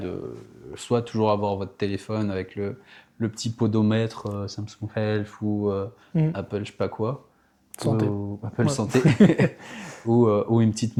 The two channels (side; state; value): both; identical; correlation 1.00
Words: soit toujours avoir votre téléphone avec le petit podomètre Samsung Health ou Mm. Apple je sais pas quoi, Santé. ou Apple Ouais. Santé, ou une petite